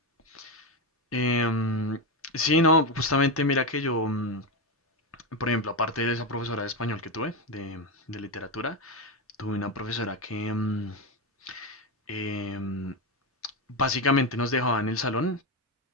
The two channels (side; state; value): both; normal; correlation 0.11